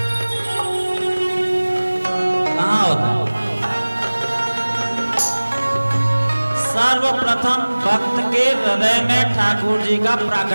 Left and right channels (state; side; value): inverted; both; correlation -1.00